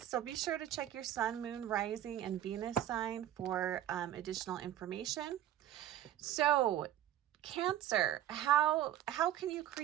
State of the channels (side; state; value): left; quieter; 12.0 dB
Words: be sure to check your sun, moon, rising, and Venus sign for additional information. So Cancer, how can you